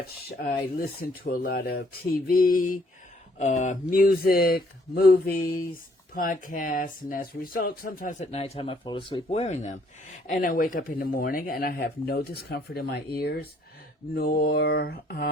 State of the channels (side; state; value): both; normal; correlation 0.65